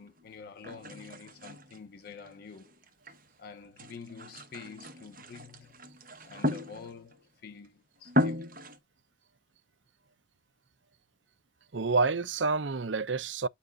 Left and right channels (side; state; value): both; normal; correlation -0.06